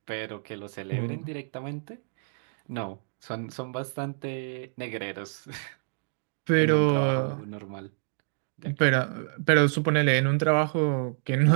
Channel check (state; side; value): silent; left; digital silence